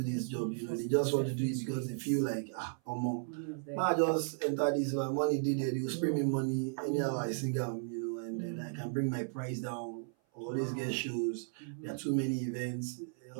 this job. You know, they just want to do it because they feel like I just enter this, my money did it, they will spray me money anyhow I sing them, you know, and then I can bring my price down, always get shows. There are too many events,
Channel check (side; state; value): left; silent; 54 dB below the other